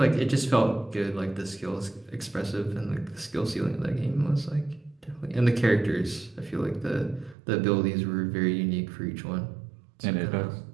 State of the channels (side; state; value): left; drops out; at 7.4 s